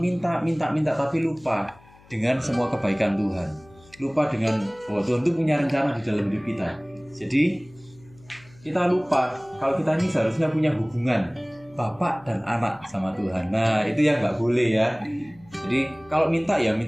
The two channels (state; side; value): noise; left; hum, 26 dB below the sound